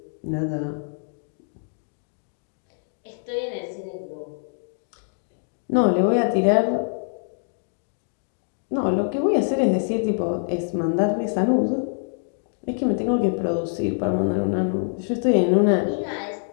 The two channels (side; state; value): right; silent; digital silence